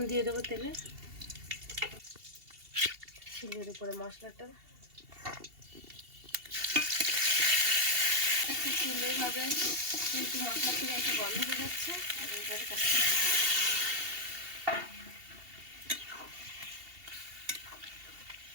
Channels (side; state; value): left; late; 2.7 ms